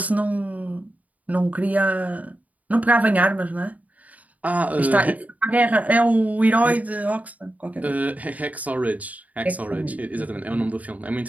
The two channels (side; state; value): left; late; 0.073 ms